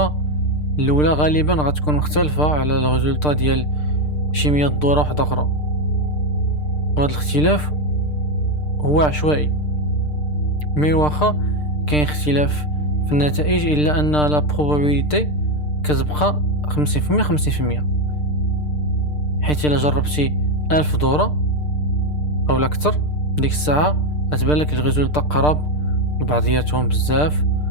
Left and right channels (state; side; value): late; right; 6.7 ms